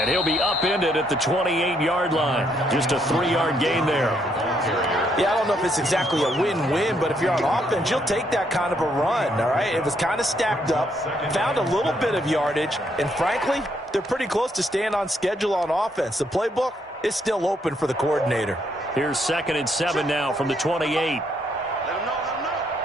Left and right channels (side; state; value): both; normal; correlation 0.73